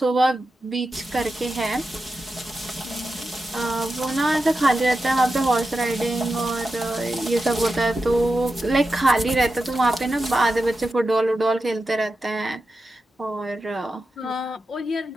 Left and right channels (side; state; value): both; normal; correlation 0.91